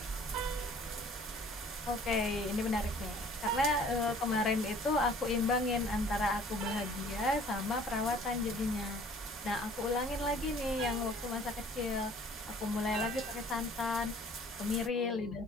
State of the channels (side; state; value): both; normal; correlation 0.53